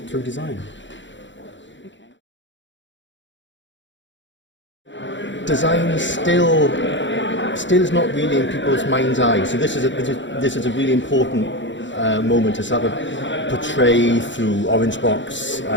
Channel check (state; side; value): late; right; 0.54 ms